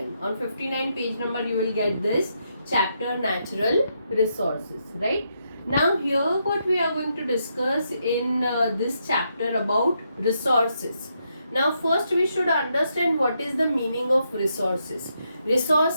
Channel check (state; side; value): inverted; both; correlation -0.80